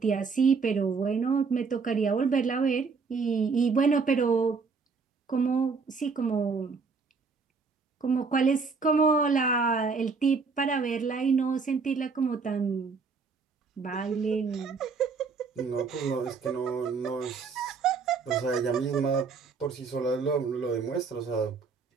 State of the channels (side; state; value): left; quieter; 4.9 dB